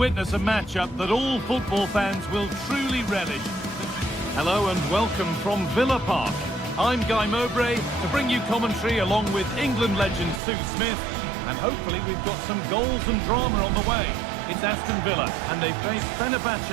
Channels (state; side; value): drops out; left; at 10.4 s